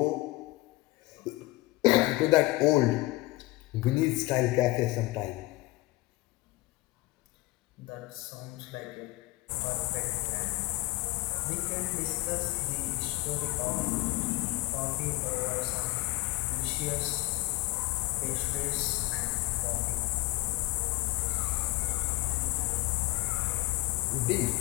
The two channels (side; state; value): right; quieter; 20.8 dB